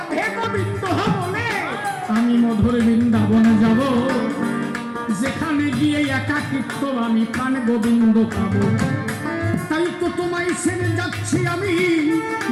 গোবিন্দ বলে আমি মধুর বৃন্দাবনে যাব, যেখানে গিয়ে একাকিত্ব আমি প্রাণ গোবিন্দ পাবো। তাই তো তোমায় ছেড়ে যাচ্ছি আমি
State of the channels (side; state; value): both; identical; correlation 1.00